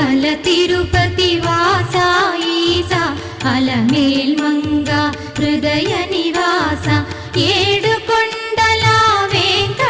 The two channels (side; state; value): both; identical; correlation 1.00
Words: తిరుపతి వాస ఈసా అలమేల్ మంగ హృదయ నివాస ఏడు కొండల